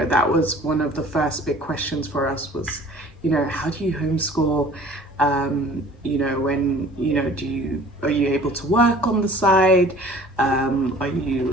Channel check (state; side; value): normal; both; correlation 0.49